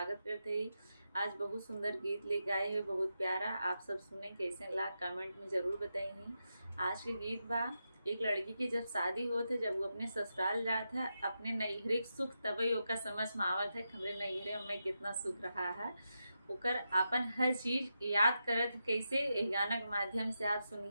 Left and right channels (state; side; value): inverted; both; correlation -0.87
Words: करते ही। आज बहुत सुंदर गीत लेके आए हैं, बहुत प्यारा। आप सब सुने कैसे ला कमेंट में ज़रूर बताइए। आज के गीत बा, एक लड़की की जब शादी होत है, जब वो अपने ससुराल जात है, अपने नैहरे के सुख तभी ओका समझ में आवत है हमरे नैहरे में कितना सुख रहा है। ओकर अपन हर चीज़ याद करत है। कैसे ए गाना के माध्यम से आप